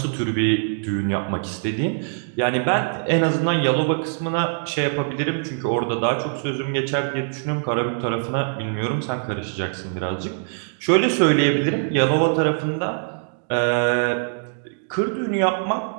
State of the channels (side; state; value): left; silent; digital silence